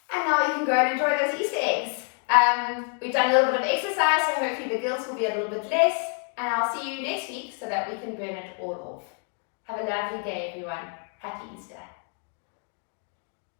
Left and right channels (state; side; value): quieter; right; 39.8 dB